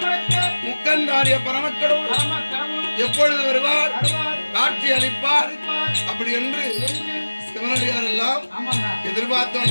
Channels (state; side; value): inverted; both; correlation -1.00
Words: முக்கந்தாரிய பரமக்கடவுள் எப்பொழுது வருவார், காட்சி அளிப்பார் அப்படி என்று சிவனடியார் எல்லாம் எதிர்பார்த்த